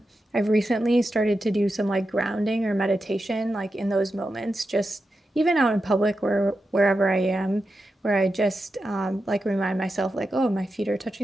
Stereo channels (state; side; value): normal; both; correlation 0.89